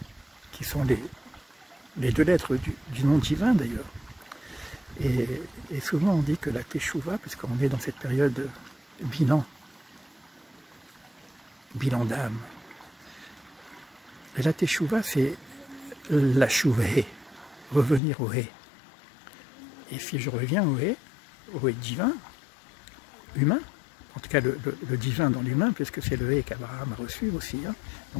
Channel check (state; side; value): drops out; right; at 18.0 s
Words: qui sont les deux lettres du nom divin d'ailleurs. Et souvent on dit que la Teshuvah, puisqu'on est dans cette période de bilan d'âme, et la Teshuvah c'est la Shuvah, revenir au He. Et si je reviens au He divin, humain, en tout cas le divin dans l'humain, puisque c'est le He qu'Abraham a reçu aussi, hein.